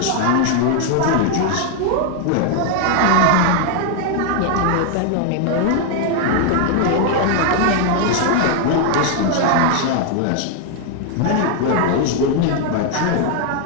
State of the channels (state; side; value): different; both; correlation 0.00